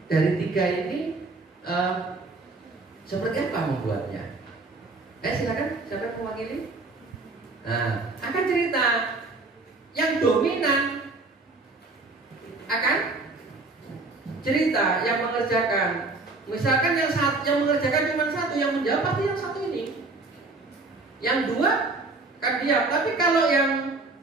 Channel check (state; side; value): quieter; left; 3.4 dB